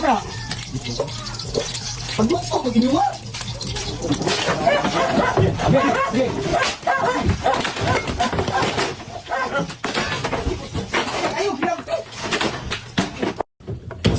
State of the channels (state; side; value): identical; both; correlation 1.00